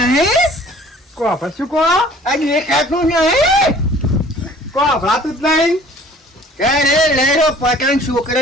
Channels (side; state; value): both; normal; correlation 0.51